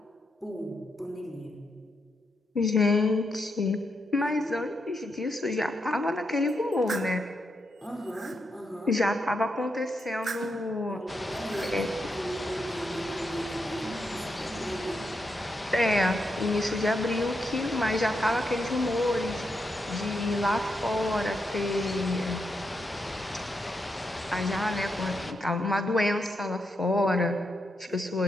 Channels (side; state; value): both; normal; correlation 0.83